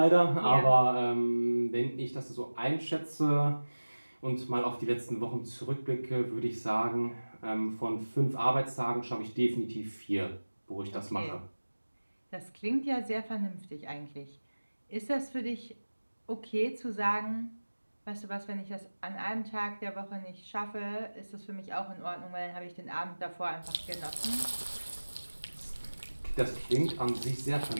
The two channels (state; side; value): inverted; both; correlation -1.00